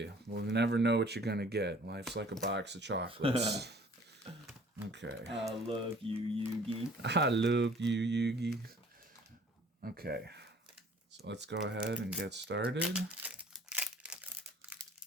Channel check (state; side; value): normal; both; correlation 0.53